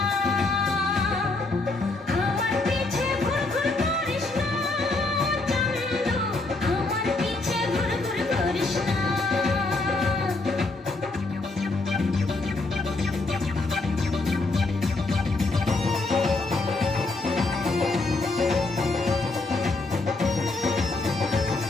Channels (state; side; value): quieter; right; 3.3 dB